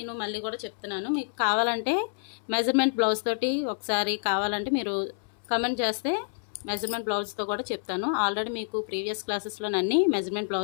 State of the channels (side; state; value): right; silent; 59 dB below the other